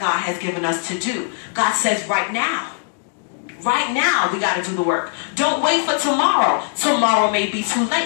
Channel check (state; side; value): silent; right; digital silence